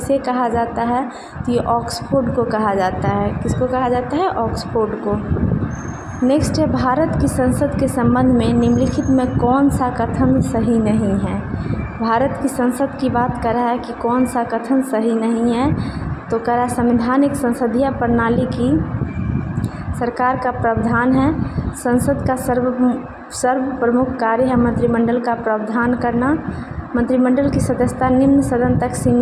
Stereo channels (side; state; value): both; identical; correlation 1.00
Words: कहा जाता है? तो ये ऑक्सफोर्ड को कहा जाता है। किसको कहा जाता है? ऑक्सफोर्ड को। नेक्स्ट है, भारत की संसद के संबंध में निम्नलिखित में कौन सा कथन सही नहीं है? भारत की संसद की बात कर रहा है कि कौन सा कथन सही नहीं है? तो कह रहा है, संवैधानिक संसदीय प्रणाली की सरकार का प्रावधान है, संसद का सर्व प्रमुख कार्य है मंत्रिमंडल का प्रावधान करना, मंत्रिमंडल की सदस्यता निम्न सदन तक